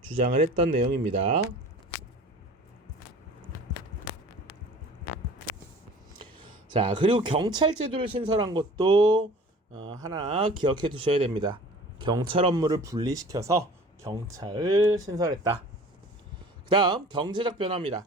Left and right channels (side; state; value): both; normal; correlation 0.45